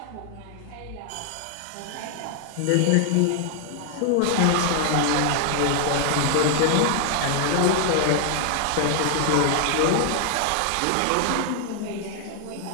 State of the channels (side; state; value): both; different; correlation 0.00